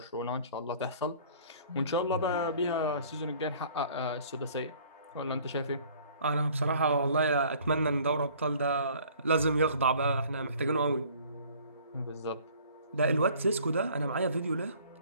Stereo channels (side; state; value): both; inverted; correlation -0.53